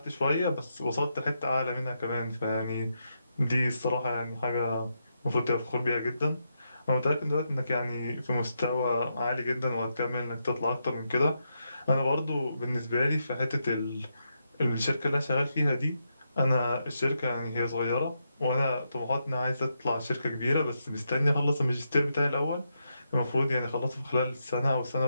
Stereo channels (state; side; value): inverted; both; correlation -0.83